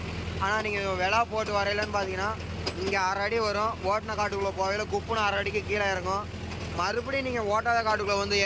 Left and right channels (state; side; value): identical; both; correlation 1.00